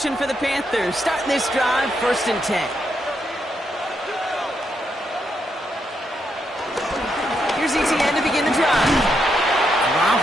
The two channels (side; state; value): both; normal; correlation 0.80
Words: for the Panthers. Starting this drive, 1st and 10. Here's ETN to begin the drive.